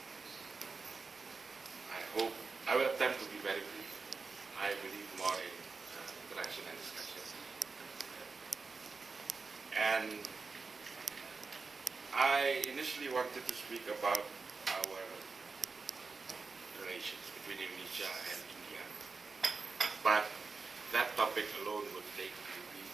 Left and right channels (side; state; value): left; quieter; 4.4 dB